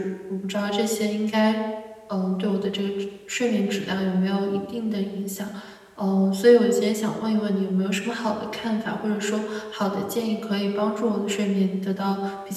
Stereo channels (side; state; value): both; identical; correlation 1.00